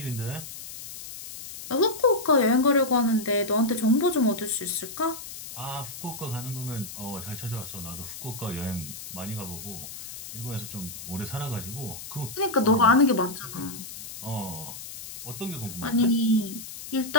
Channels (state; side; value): noise; left; hiss, 11 dB below the sound